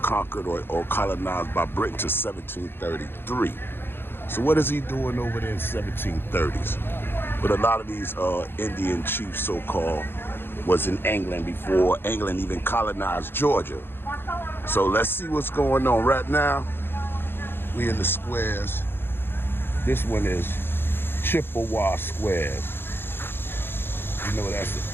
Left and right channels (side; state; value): right; late; 0.10 ms